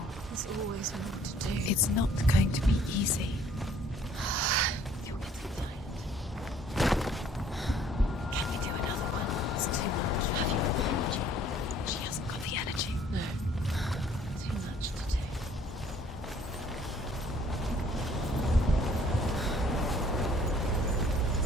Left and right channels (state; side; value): normal; both; correlation 0.58